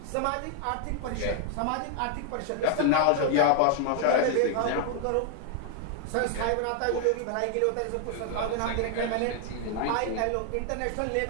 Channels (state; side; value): different; both; correlation 0.00